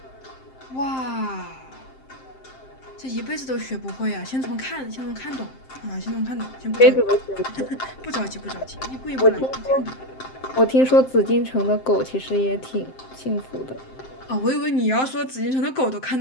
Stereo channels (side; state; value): right; late; 7.6 ms